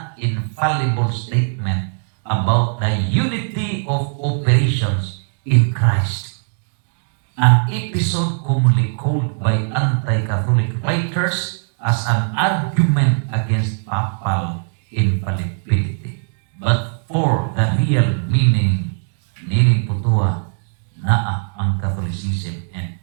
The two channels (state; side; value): silent; left; digital silence